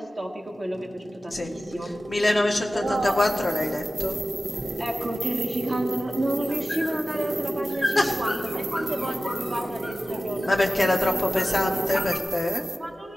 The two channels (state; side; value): normal; both; correlation 0.95